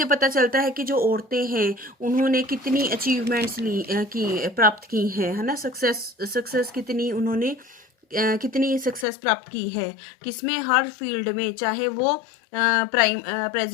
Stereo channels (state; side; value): drops out; right; at 9.1 s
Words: पता चलता है कि जो औरतें हैं उन्होंने कितनी अचीवमेंट्स प्राप्त की हैं, है ना. सक्सेस कितनी उन्होंने कितनी सक्सेस प्राप्त की है किसमें, हर फील्ड में, चाहे वो